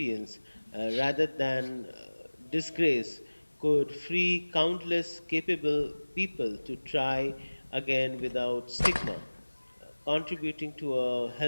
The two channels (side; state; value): both; inverted; correlation -1.00